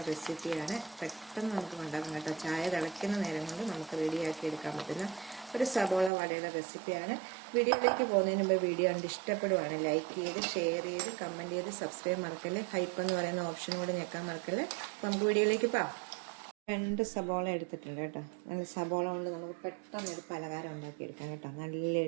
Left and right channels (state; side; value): drops out; left; at 6.1 s